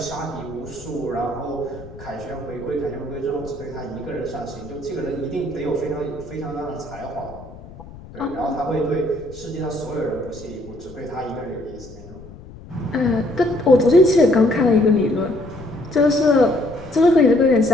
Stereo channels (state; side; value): noise; left; rumble, 17 dB below the sound